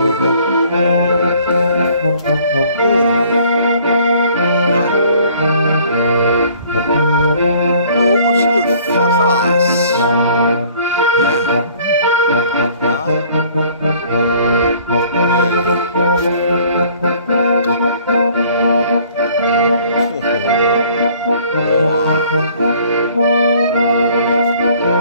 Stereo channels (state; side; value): inverted; both; correlation -0.56